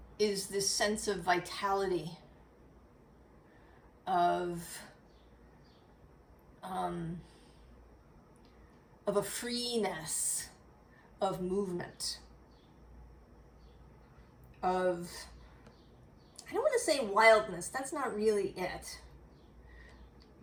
is this sense of vitality, of a freeness of movement, of, I don't want to say wildness, that's not really it.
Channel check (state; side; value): identical; both; correlation 1.00